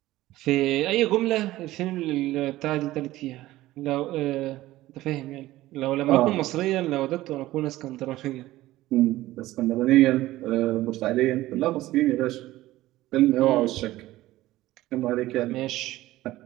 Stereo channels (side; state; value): left; quieter; 16.4 dB